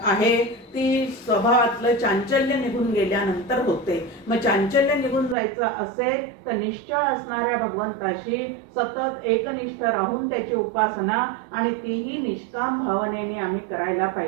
आहे ती स्वभावातलं चांचल्य निघून गेल्यानंतर होते. मग चांचल्य निघून जायचं असेल तर निश्चळ असणाऱ्या भगवंताशी सतत एकनिष्ठ राहून त्याची उपासना आणि तीही निष्काम भावनेने आम्ही करायला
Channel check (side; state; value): left; drops out; at 5.4 s